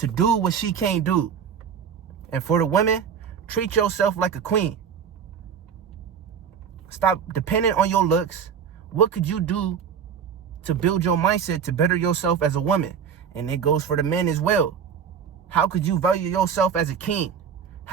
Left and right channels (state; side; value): quieter; left; 7.4 dB